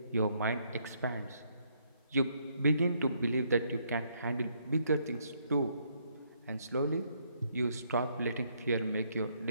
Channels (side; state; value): both; inverted; correlation -0.71